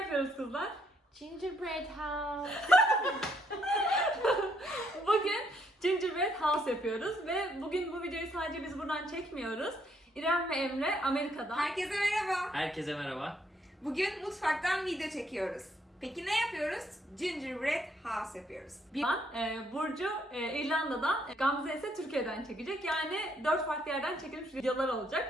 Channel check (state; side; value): normal; both; correlation 0.72